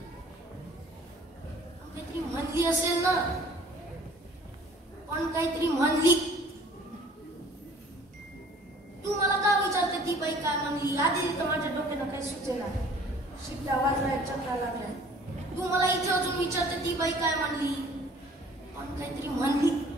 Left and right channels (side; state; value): both; normal; correlation 0.52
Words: काहीतरी म्हणली असेल ना पण काहीतरी म्हणली. तू मला का विचारते ती बाई काय म्हणली. आधी तर माझ्या डोक्यानं काही सुचेना. शिट्ट्या वाजलाय चक्रा लागलाय. तू मला इथे अजून विचारते ती बाई काय म्हणली पण काहीतरी म्हणली.